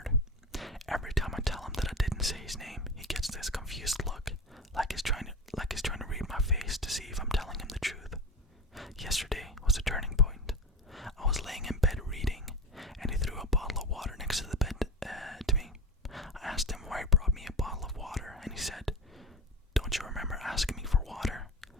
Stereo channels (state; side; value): normal; both; correlation 0.26